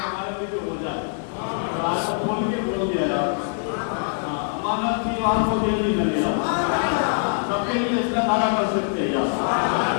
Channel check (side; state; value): right; silent; 63 dB below the other